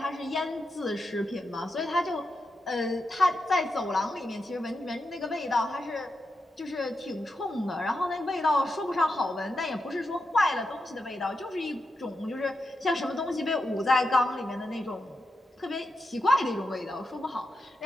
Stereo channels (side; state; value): both; normal; correlation 0.87